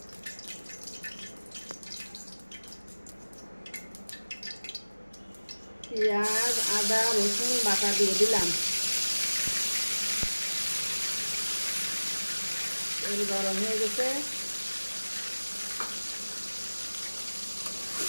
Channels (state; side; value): inverted; both; correlation -1.00